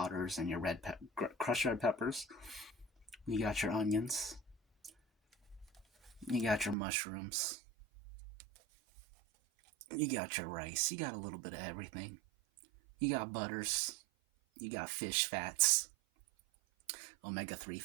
and your crushed red peppers. You got your onions. You got your mushrooms. You got your rice. You got a little bit of everything. You got butters. You got fish fats, omega-3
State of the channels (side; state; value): left; drops out; at 6.8 s